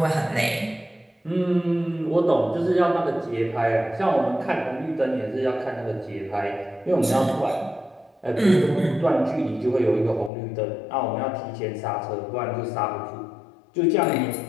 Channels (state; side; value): drops out; right; at 10.3 s